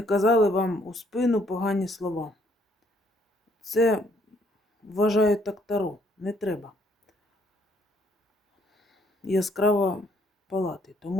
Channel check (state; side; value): normal; both; correlation 0.67